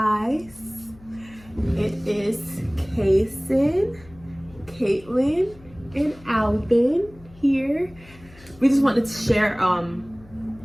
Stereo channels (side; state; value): left; noise; hum, 23 dB below the sound